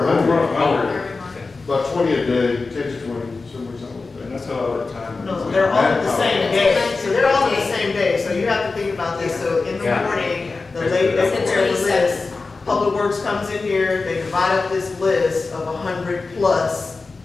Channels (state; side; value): quieter; right; 3.9 dB